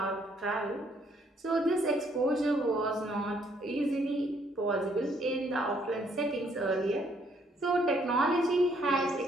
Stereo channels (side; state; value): both; normal; correlation 0.68